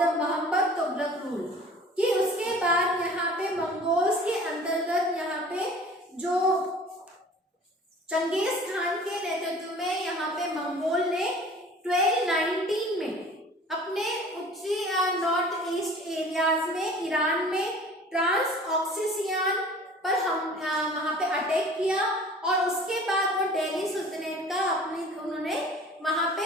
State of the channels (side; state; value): both; normal; correlation 0.46